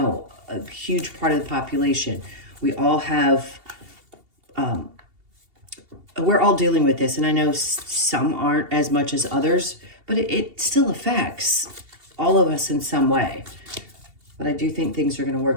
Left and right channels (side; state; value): left; late; 2.7 ms